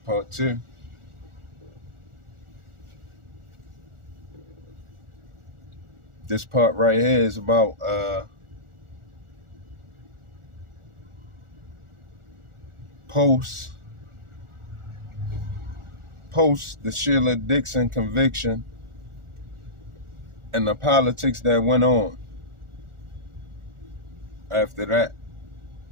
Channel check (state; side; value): late; left; 1.4 ms